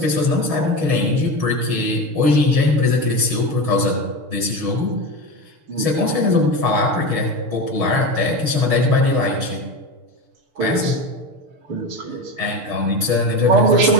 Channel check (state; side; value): late; left; 6.7 ms